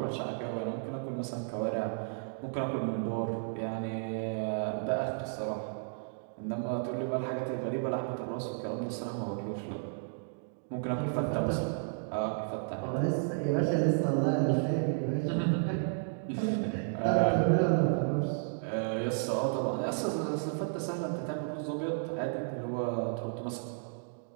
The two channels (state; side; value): silent; left; digital silence